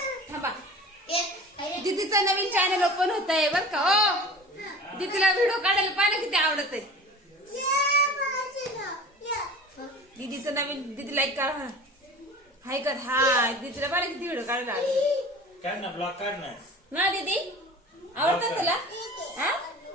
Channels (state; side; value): normal; both; correlation 0.39